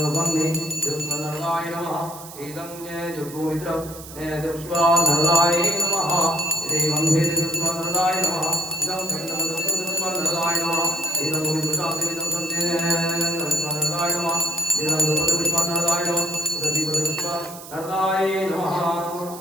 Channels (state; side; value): noise; right; hiss, 15 dB below the sound